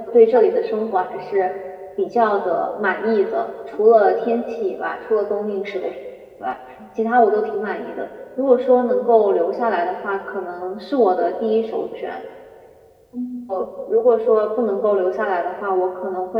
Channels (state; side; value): identical; both; correlation 1.00